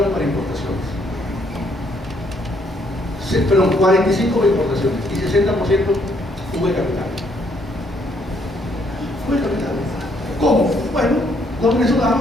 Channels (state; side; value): normal; both; correlation 0.69